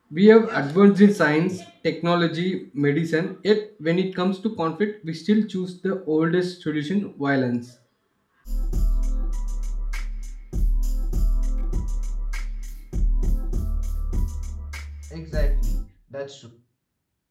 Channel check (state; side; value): identical; both; correlation 1.00